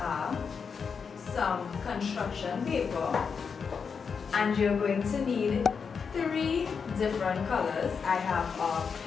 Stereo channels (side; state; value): right; quieter; 5.9 dB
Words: some construction paper, and you're going to need 3 different colors. I have a